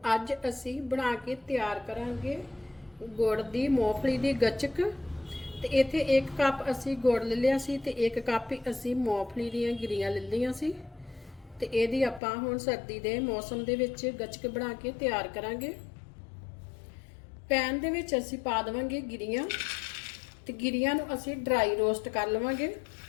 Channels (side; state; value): right; drops out; at 12.2 s